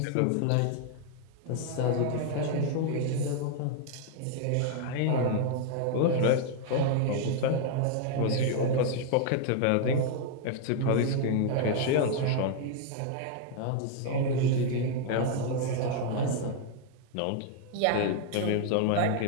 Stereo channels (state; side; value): different; both; correlation 0.00